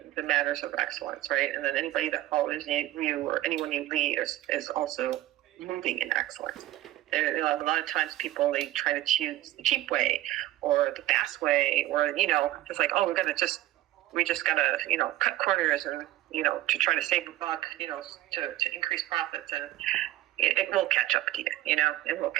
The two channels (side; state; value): left; quieter; 15.2 dB